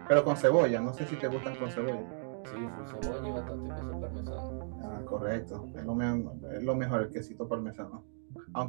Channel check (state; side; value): silent; left; digital silence